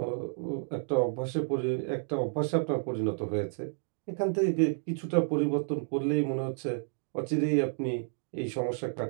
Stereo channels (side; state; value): left; silent; digital silence